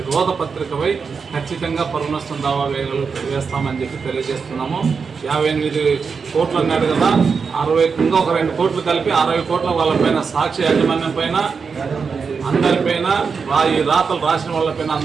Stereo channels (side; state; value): left; quieter; 5.5 dB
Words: రోత పత్రికపై ఖచ్చితంగా పరునష్టం దావా వేస్తామని చెప్పి తెలియజేస్తున్నాము. 58 కోట్లు అన్నాడు కదా, 60 ఇంకా ఒక 2 కోట్లు కలిపి 60 కోట్ల వాళ్ళపైన సాక్షి యాజమాన్యం పైన అందరిపైన ఈ రాతలు రాసిన వాళ్ళపైన